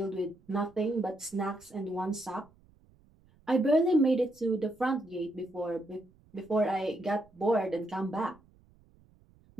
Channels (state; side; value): noise; right; rumble, 30 dB below the sound